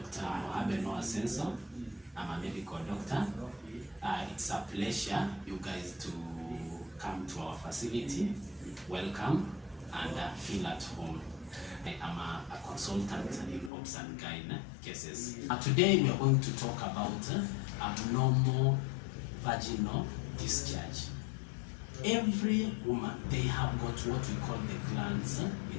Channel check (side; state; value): right; drops out; at 13.7 s